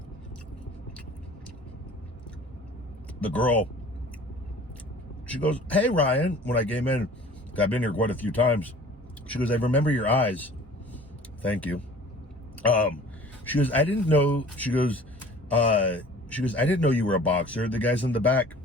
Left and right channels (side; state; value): both; normal; correlation 0.47